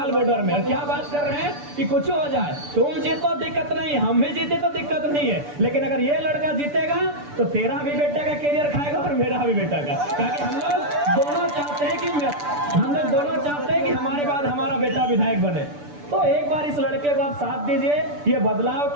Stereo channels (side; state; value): left; late; 6.9 ms